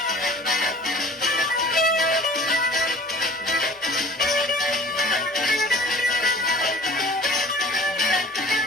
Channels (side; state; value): both; normal; correlation 0.46